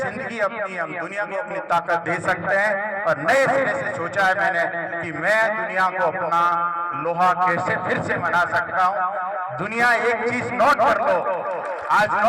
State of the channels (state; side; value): identical; both; correlation 1.00